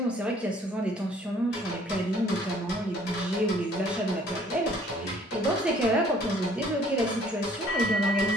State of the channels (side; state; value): both; normal; correlation 0.58